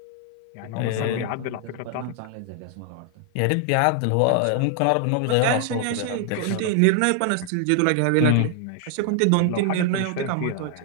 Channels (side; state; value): both; different; correlation 0.00